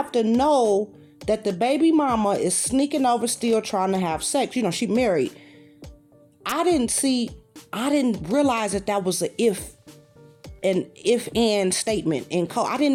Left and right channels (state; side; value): identical; both; correlation 1.00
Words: to know that the baby mama is sneaking over still trying to have sex. She married. I didn't realize that was an if-and statement in code. I